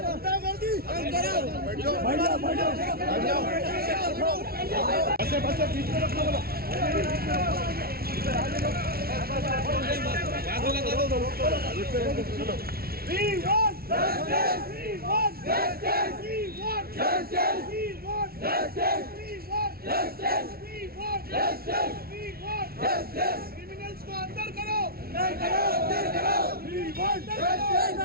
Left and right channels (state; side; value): late; left; 0.44 ms